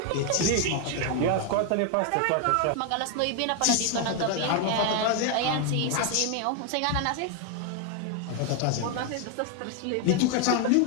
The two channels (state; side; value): different; both; correlation 0.01